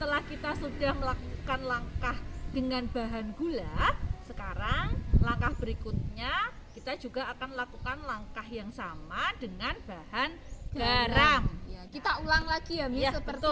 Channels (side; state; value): both; identical; correlation 1.00